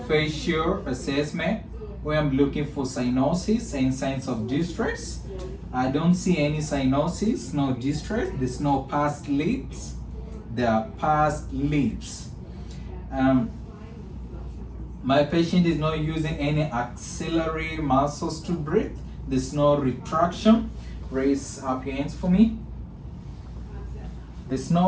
assessment, where I'm looking for cyanosis and signs of distress. I don't see any cyanosis, no distress. There's no pursed lips. There are pursed lips. My patient is not using any axillary muscles to breathe. There's no retraction. Raise up your hands for me. There's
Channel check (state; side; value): identical; both; correlation 1.00